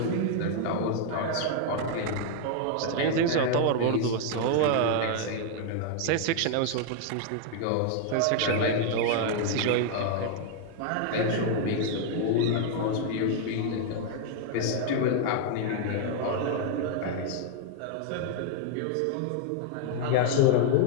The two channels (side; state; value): both; different; correlation 0.00